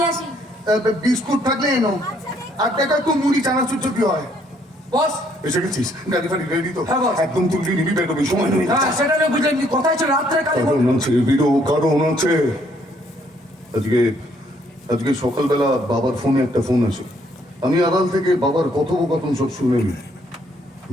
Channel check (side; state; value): both; normal; correlation 0.67